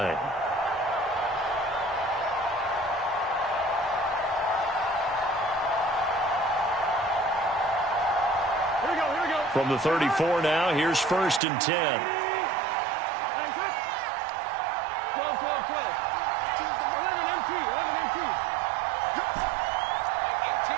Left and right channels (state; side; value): drops out; left; at 11.4 s